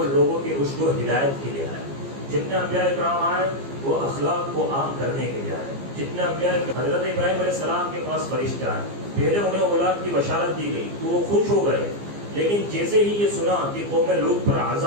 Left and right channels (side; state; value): left; late; 15 ms